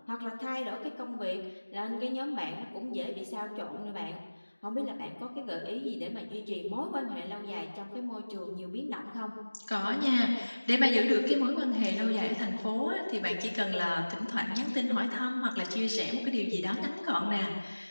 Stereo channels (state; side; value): inverted; both; correlation -1.00